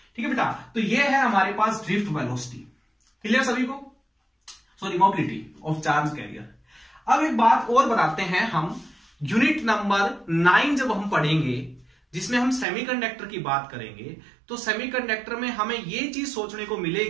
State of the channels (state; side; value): drops out; left; at 12.7 s